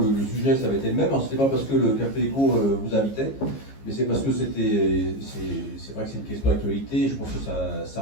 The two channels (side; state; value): right; late; 15 ms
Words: sujet, ça avait été le même. C'était pas parce que le Café Éco vous invitait, mais c'est parce que c'est vrai que c'est une question d'actualité, je pense que